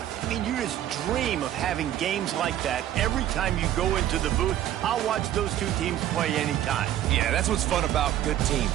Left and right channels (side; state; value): left; quieter; 12.2 dB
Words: I mean, you just dream of having games like that every time you go into the booth. I'll watch those two teams play anytime. Yeah, that's what's fun about good teams.